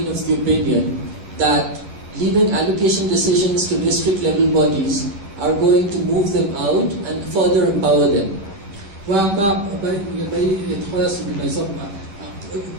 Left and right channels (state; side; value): late; left; 10 ms